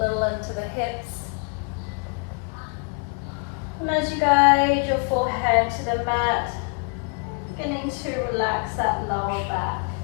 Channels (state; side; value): quieter; right; 35.9 dB